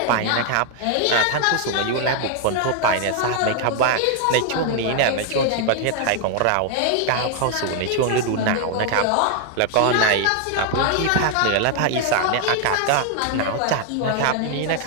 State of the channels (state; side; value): different; both; correlation 0.00